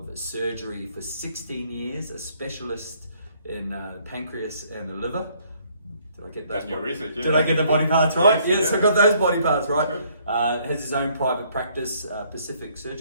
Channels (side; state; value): both; inverted; correlation -0.64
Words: surgery for 16 years, a specialist in pancreas and the liver. Did I get That's your research, yeah. Did I get the body parts right? Yes, yeah. I got those body parts right. Has his own private practice, Pacific